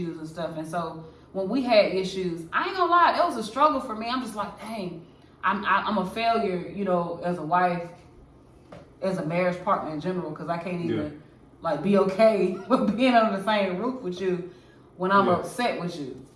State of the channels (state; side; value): identical; both; correlation 1.00